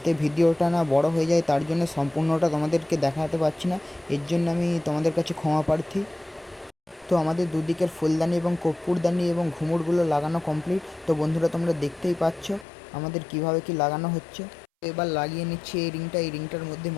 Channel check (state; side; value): drops out; right; at 12.7 s